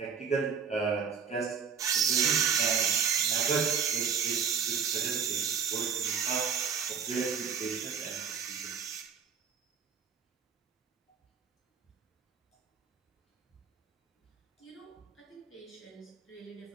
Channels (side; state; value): left; quieter; 6.7 dB